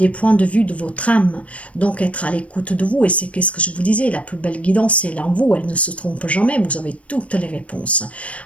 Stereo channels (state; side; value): late; right; 0.064 ms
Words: points de vue de votre âme, donc être à l'écoute de vous, et c'est ce que je vous disais, la plus belle guidance c'est en vous, elle ne se trompe jamais, vous avez toutes les réponses.